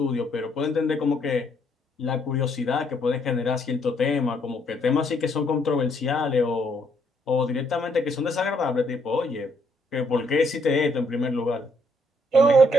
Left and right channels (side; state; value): both; normal; correlation 0.70